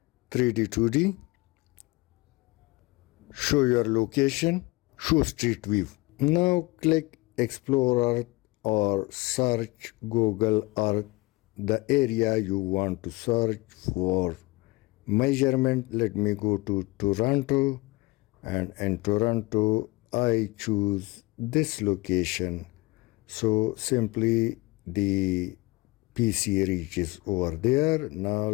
3D, 2D. Show your location, show street view. Now click Explore Earth or search Google Earth, the area you want to search for measurement. Let me go to Toronto, and in Toronto I choose this location. So simply the PC reaches over there. Now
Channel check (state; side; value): quieter; right; 22.6 dB